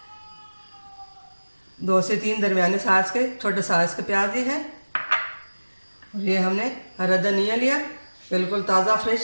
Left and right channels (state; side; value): inverted; both; correlation -1.00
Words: 2 से 3 दरमियाने साइज के छोटे साइज के प्याज लिए हैं। और ये हमने हरा धनिया लिया, बिल्कुल ताज़ा